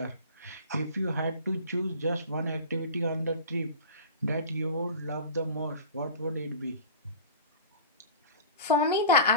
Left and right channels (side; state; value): both; inverted; correlation -0.37